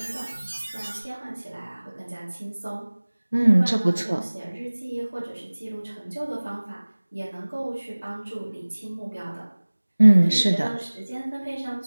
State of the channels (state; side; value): inverted; both; correlation -1.00